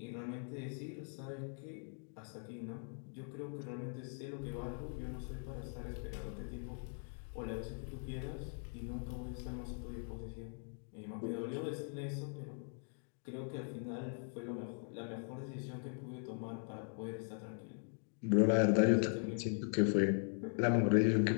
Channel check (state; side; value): silent; right; 51 dB below the other